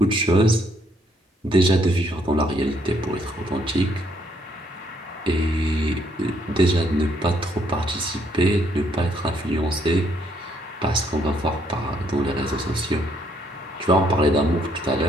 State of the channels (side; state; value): both; normal; correlation 0.70